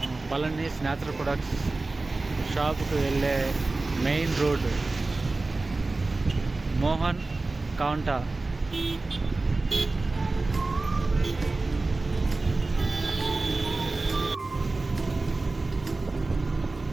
పళనిస్ న్యాచురల్ ప్రొడక్ట్స్ షాప్కు వెళ్ళే మెయిన్ రోడ్ మోహన్ కౌంటా.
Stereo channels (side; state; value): left; quieter; 3.3 dB